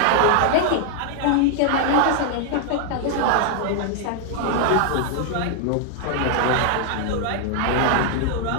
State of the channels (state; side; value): different; both; correlation 0.00